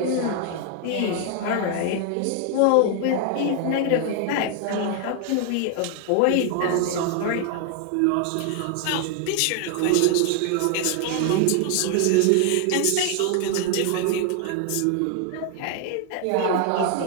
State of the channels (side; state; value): both; different; correlation 0.00